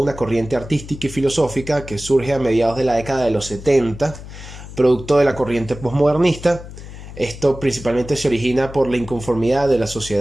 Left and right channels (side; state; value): left; noise; hum, 14 dB below the sound